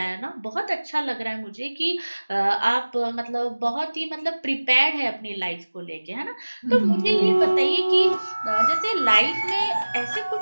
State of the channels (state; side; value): inverted; both; correlation -1.00